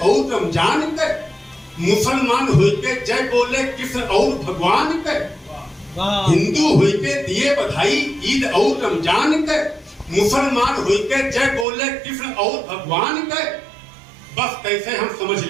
रमजान के, मुसलमान होके जय बोले कृष्ण और भगवान के। हिंदू होके दिए बधाई ईद और रमजान के, मुसलमान होके जय बोले कृष्ण और भगवान के। बस कैसे हम समझ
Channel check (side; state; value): left; drops out; at 11.7 s